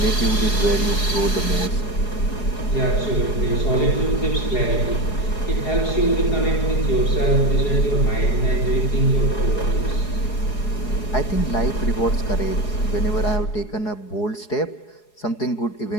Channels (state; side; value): late; right; 4.8 ms